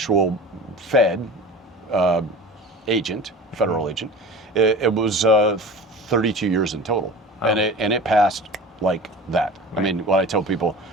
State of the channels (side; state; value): both; normal; correlation 0.36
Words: Fed agent, federal agent. It was 32 years in total, and it passed like that. Right. I mean, when I tell people,